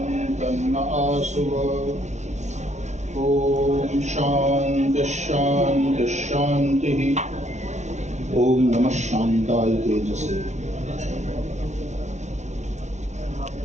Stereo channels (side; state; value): left; late; 0.33 ms